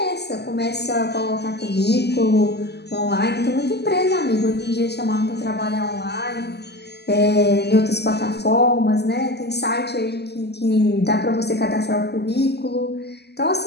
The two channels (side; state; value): right; late; 0.49 ms